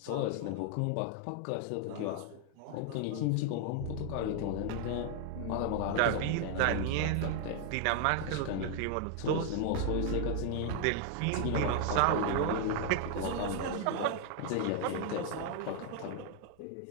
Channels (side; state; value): both; different; correlation 0.00